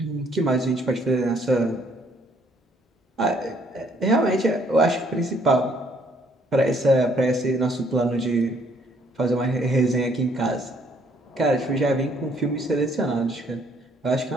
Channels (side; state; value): both; normal; correlation 0.65